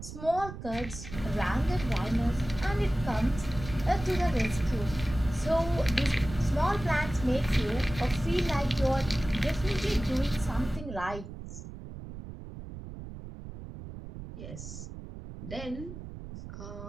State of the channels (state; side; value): noise; right; rumble, 11 dB below the sound